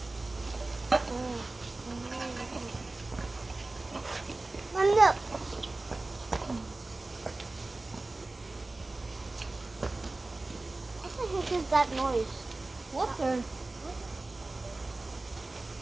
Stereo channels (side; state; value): left; quieter; 3.1 dB